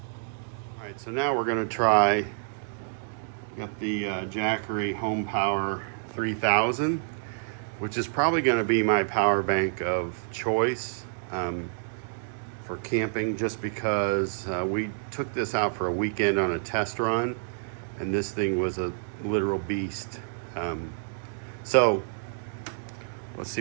All right, so now we're going to try. Got the Jackery Home Power 3000, which is probably going to be my power bank of choice for camping, just because we took this out for a weekend on a test run, and this thing was a literal beast. So let's see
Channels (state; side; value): silent; left; digital silence